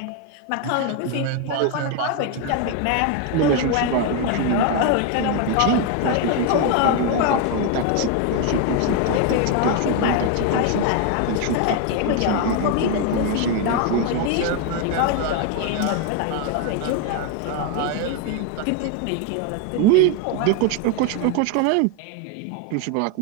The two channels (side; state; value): both; different; correlation 0.01